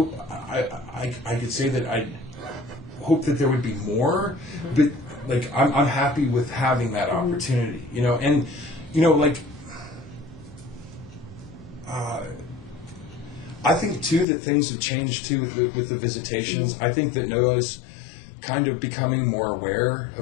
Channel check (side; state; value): right; drops out; at 14.2 s